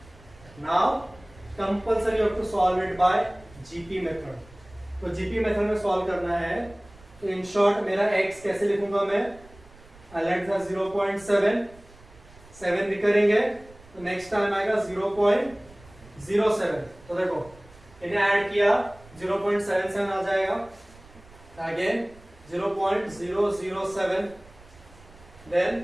Now compulsory you have to solve it by GP method. तो जीपी मेथड में सॉल्व करना है. तो इन शॉर्ट मेरा x कैसे लिखूंगा मैं. आई लेट द 0.7 7 रिकरिंग है. तो नेक्स्ट टाइम आएगा 0.07. तो देखो इन्हें ऐड किया 0.77 आ जाएगा. Again 0.007, then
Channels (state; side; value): noise; right; rumble, 24 dB below the sound